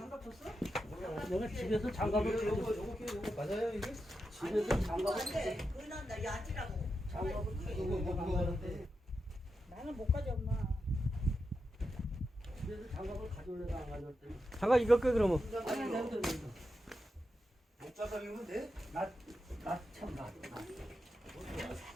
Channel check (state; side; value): normal; both; correlation 0.88